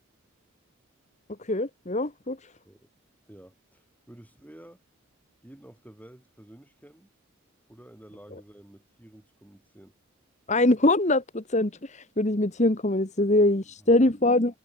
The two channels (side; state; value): both; normal; correlation 0.39